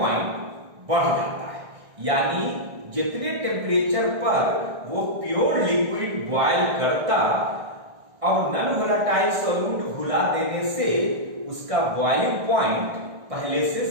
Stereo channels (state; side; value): late; left; 1.6 ms